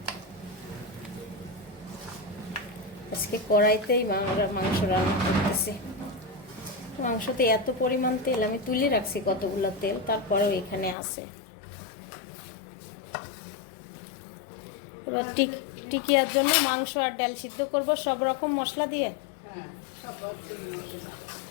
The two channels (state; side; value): drops out; right; at 11.0 s